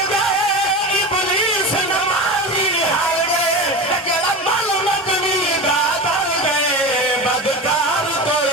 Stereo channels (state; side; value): normal; both; correlation 0.26